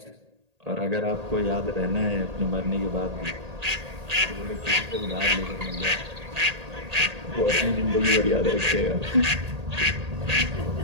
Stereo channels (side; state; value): left; late; 1.8 ms